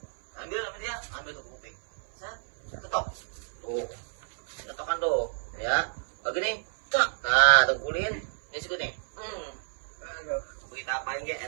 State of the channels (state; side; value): silent; left; 58 dB below the other